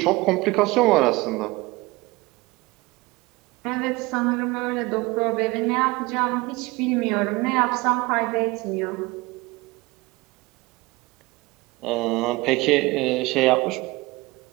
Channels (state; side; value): quieter; left; 22.3 dB